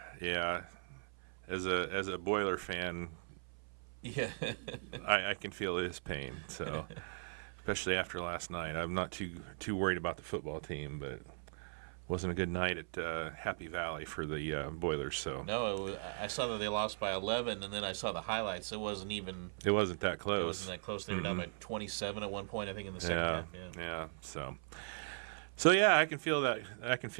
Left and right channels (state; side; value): silent; left; 52 dB below the other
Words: Yeah. As a Boiler fan, Yeah, I can feel his pain. So, especially after last night, I'm not too worried about the football team, but wasn't a good night at Happy Valley for the Boilers. So I saw that they lost by 11, and then I saw the highlights. It wasn't even. it wasn't that close. It wasn't that close. They were down by 27 at one point, I think, in the second Yeah, half. Yeah. yeah. So yeah, I can feel that. I can